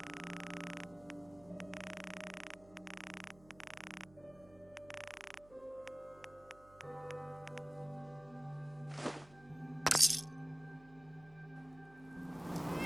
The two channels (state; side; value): noise; right; hum, 23 dB below the sound